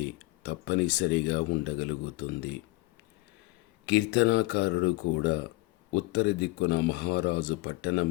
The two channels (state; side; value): quieter; right; 22.0 dB